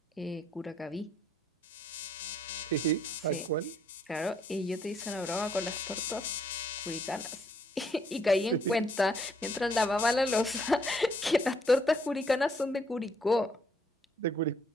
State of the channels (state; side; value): normal; both; correlation 0.68